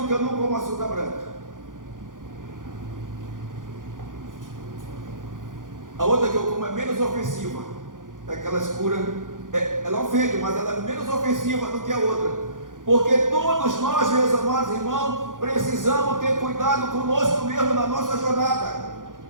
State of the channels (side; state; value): left; late; 0.89 ms